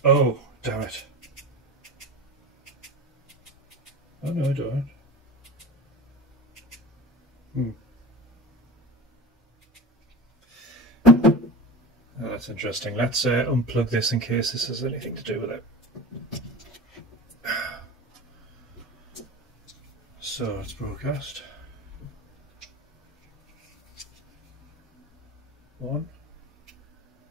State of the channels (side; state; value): both; normal; correlation 0.30